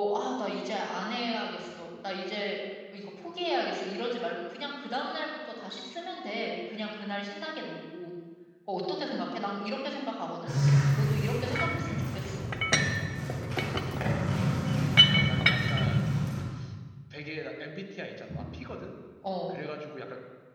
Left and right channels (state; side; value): identical; both; correlation 1.00